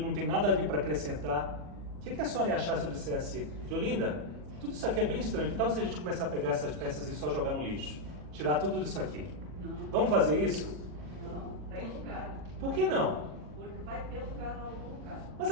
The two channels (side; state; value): left; late; 40 ms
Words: tem nada ali para acrescentar. O que a senhora ia achar se eu dissesse, Diolinda, tudo isso aqui é bem estranho, que tal se a gente começar a pegar essas peças e só jogar no lixo? Tirar tudo isso aqui? Não. Vamos fazer isso? Não, tem lugar. Por que não? Porque vai ter lugar em algum lugar. Mas